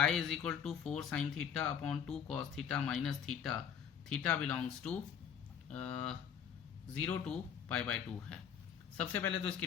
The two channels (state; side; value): quieter; right; 8.1 dB